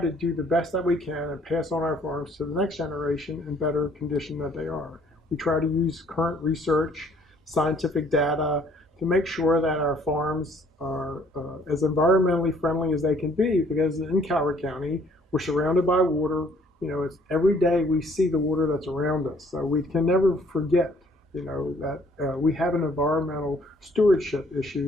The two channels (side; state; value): both; normal; correlation 0.61